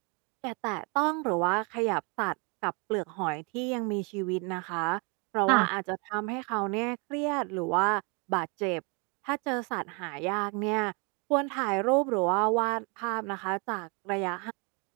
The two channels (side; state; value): left; quieter; 31.7 dB